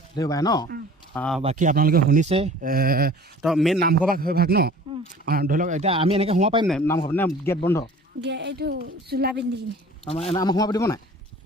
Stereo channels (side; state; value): both; normal; correlation 0.46